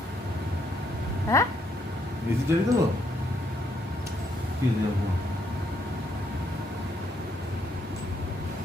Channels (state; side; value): normal; both; correlation 0.73